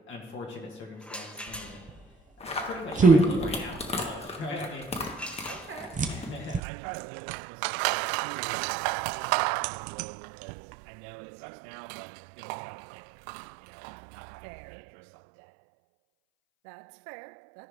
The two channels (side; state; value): left; drops out; at 6.6 s